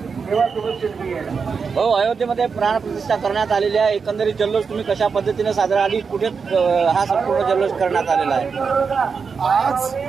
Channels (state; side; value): quieter; left; 5.5 dB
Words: हो, अयोध्येमध्ये प्राणप्रतिष्ठा करण्यात आलेली आहे. एकंदरीत जल्लोष तुम्ही कशा पद्धतीने साजरा आणि कुठे हा संपूर्ण जल्लोष करण्यात आलेला आहे?